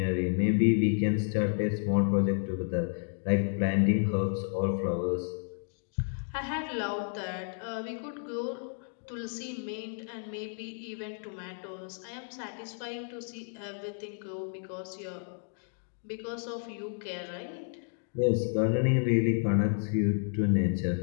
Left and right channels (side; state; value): right; silent; 57 dB below the other